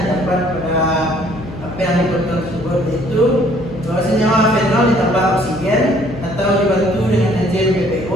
terdapat pada apa yang dipotong tersebut, yaitu bahwa senyawa fenol ditambah oksigen atau dibantu dengan enzim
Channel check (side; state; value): left; noise; hum, 14 dB below the sound